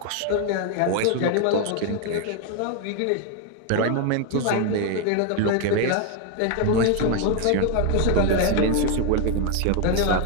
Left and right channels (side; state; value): both; different; correlation 0.01